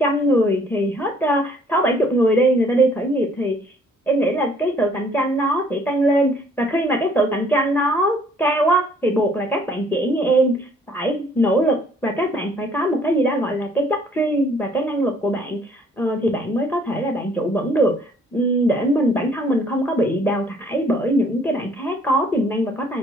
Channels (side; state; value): both; normal; correlation 0.60